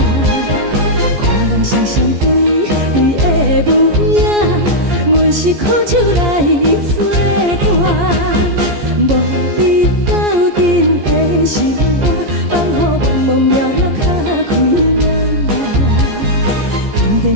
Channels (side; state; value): left; late; 14 ms